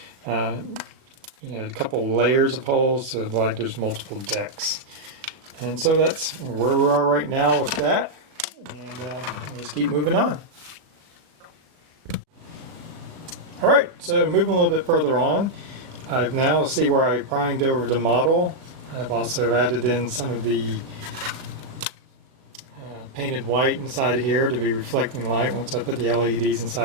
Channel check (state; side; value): late; left; 37 ms